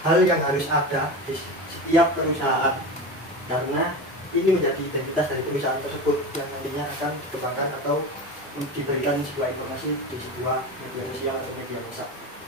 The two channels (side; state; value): both; normal; correlation 0.26